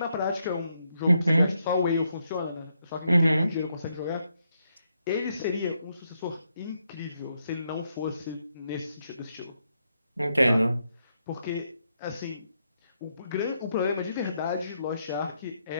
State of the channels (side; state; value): both; inverted; correlation -0.79